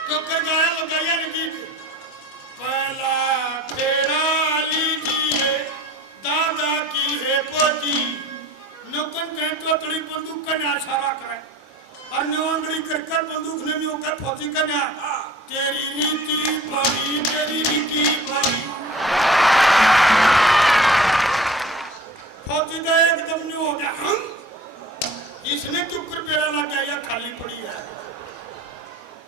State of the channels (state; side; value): normal; both; correlation 0.44